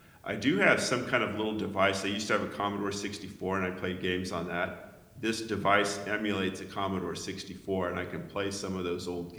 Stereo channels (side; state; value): both; identical; correlation 1.00